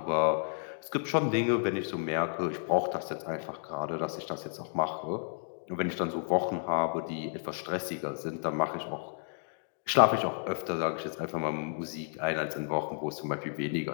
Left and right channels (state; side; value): silent; right; digital silence